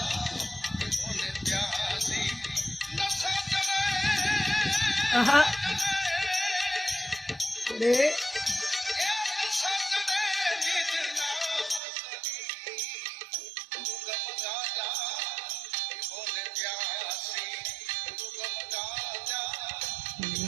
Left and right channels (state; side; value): drops out; left; at 11.8 s